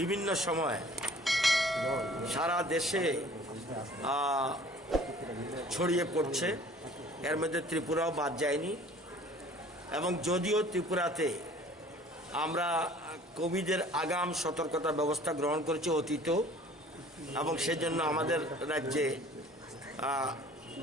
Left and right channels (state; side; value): normal; both; correlation 0.50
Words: সময় সারা দেশে ছড়িয়ে পড়ছে। এর মধ্যে ত্রিপুরাও বাদ যায়নি। এবং যদিও ত্রিপুরাতে আমরা কোভিডের আগাম সতর্কতা ব্যবস্থা গ্রহণ করেছি অতীতেও, এবং সেজন্য আমাদের রাজ্যে